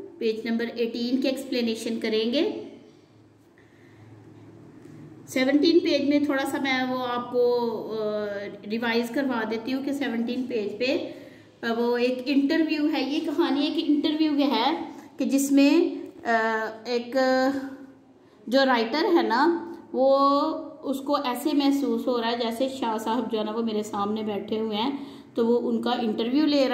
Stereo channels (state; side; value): identical; both; correlation 1.00